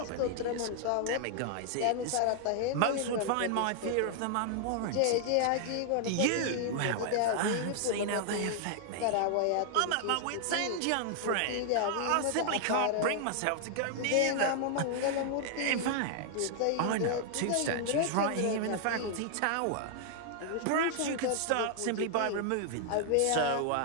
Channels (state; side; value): different; both; correlation 0.00